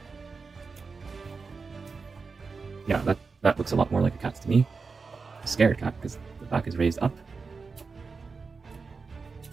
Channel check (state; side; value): quieter; left; 4.7 dB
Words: Yeah, that looks a lot more like a cat to me. A scared cat, because the back is raised up.